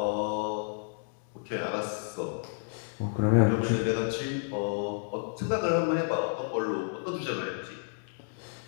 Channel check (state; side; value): silent; right; digital silence